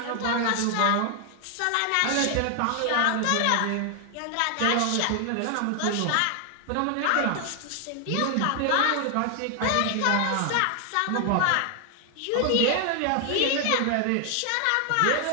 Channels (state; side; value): different; both; correlation 0.00